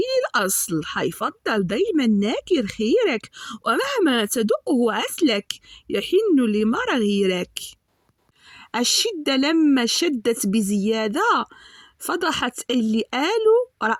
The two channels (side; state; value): both; identical; correlation 1.00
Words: الأصل حيفضل دايما ناكر خيرك، ومهما تدقه عسلك يحن لمرى غيرك. الشدة لما شدت بزيادة فضحت اللي قالوا